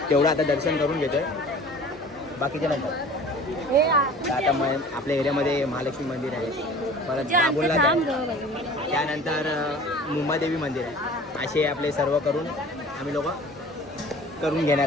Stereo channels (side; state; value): both; normal; correlation 0.45